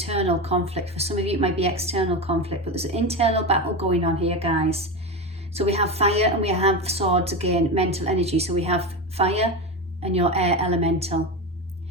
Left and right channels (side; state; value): both; normal; correlation 0.19